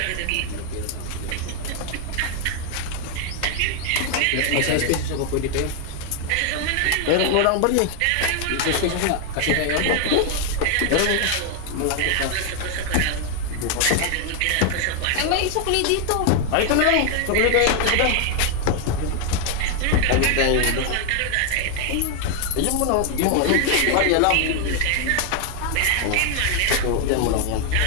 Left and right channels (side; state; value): both; different; correlation 0.00